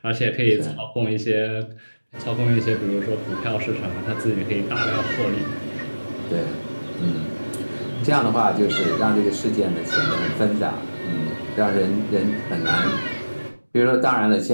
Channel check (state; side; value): inverted; both; correlation -1.00